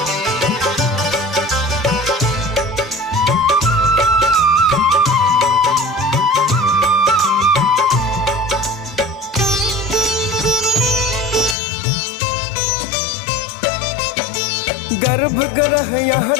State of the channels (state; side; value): drops out; right; at 11.6 s